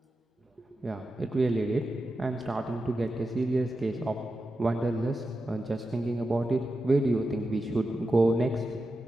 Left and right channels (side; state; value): both; normal; correlation 0.90